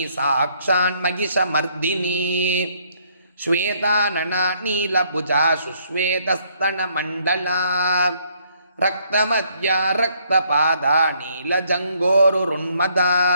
साक्षान्महिषमर्दिनी श्वेतानना नीलभुजा सुश्वेतस्तनमण्डला रक्तमद्या रक्तपादा नीलजङ्गोरुरुन्मदा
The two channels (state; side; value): inverted; both; correlation -0.67